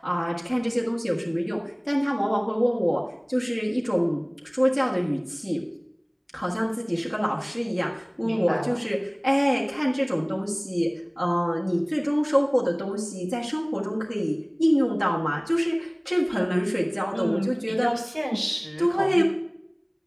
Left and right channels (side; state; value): both; identical; correlation 1.00